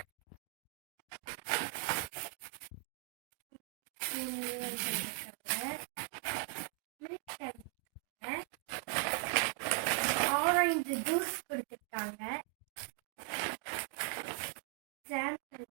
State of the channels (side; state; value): left; quieter; 29.7 dB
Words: ஆரஞ்சு ஜூஸ் கொடுத்துருக்காங்க.